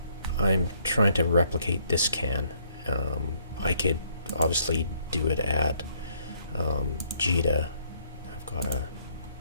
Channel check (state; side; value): inverted; both; correlation -0.67